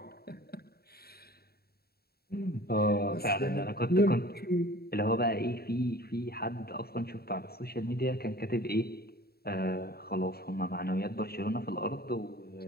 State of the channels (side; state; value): right; late; 0.45 ms